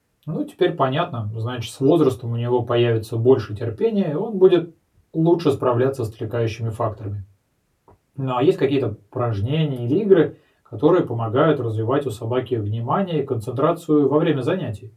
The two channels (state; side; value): identical; both; correlation 1.00